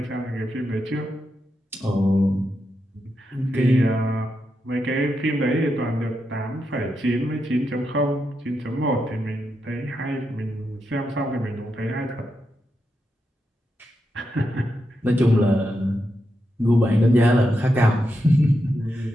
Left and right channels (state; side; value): normal; both; correlation 0.85